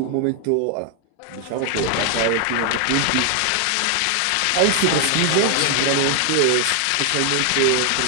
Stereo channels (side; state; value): both; different; correlation 0.00